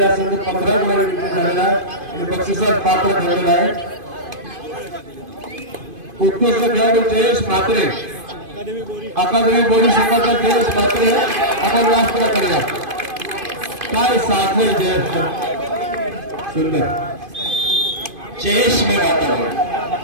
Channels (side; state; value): left; late; 2.5 ms